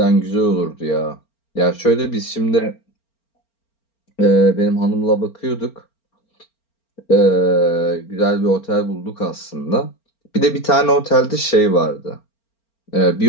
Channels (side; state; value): right; late; 4.4 ms